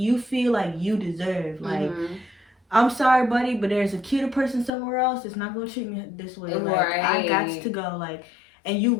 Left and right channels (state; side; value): drops out; right; at 4.7 s